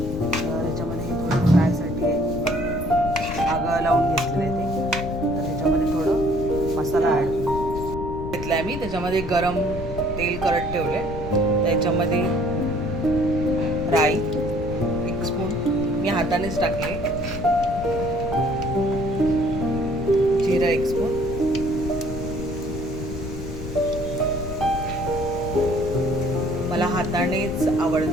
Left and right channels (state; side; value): noise; left; rumble, 8 dB below the sound